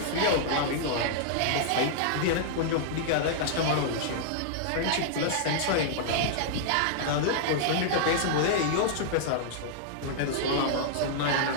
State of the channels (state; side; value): different; both; correlation -0.01